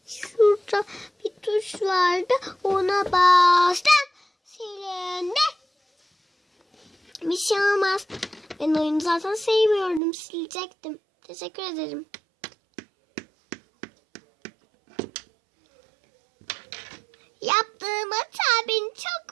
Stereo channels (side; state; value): left; drops out; at 10.0 s